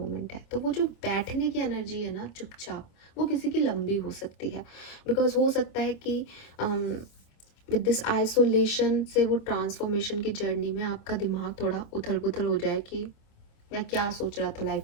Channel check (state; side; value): late; right; 26 ms